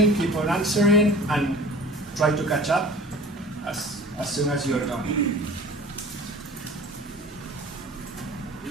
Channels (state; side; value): normal; both; correlation 0.43